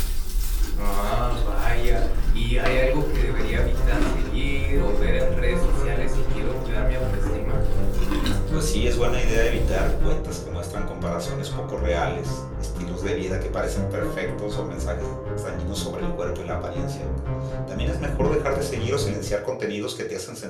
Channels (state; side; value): identical; both; correlation 1.00